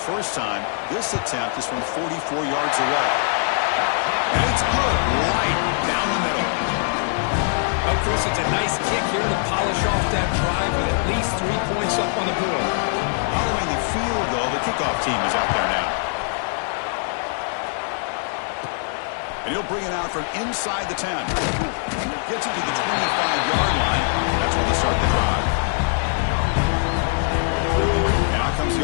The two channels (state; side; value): silent; right; 64 dB below the other